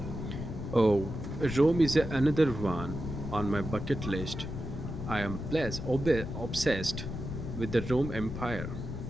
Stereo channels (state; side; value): noise; left; rumble, 6 dB below the sound